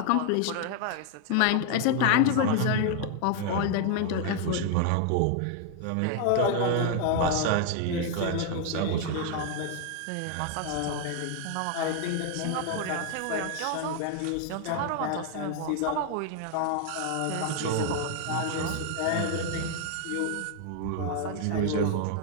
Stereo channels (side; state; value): both; different; correlation 0.00